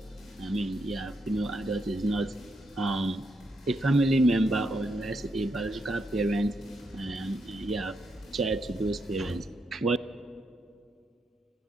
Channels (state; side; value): normal; both; correlation 0.80